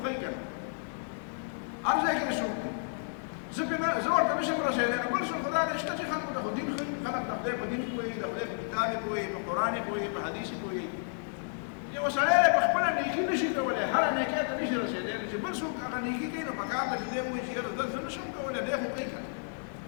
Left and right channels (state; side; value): silent; right; digital silence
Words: ښیي که نه هر ځای کې څوک دی زه ورته نشم رسېدلی نو بل څوک خو دا دی شته چې خلکو ته خو دین ښیي خلک د خدای په دین پوهېږي د خدای په کتاب یې پوهېږي په قرآن یې پوهېږي په حدیث یې پوهېږي یو سړی په خپله نیکي نشي کولی هره نیکۍ ته نشي رسېدلی چې بل څوک هغه نیکي کوي نو پکار ده چې دی ووایي چې یاره زه نشم کولی دی خو کوي که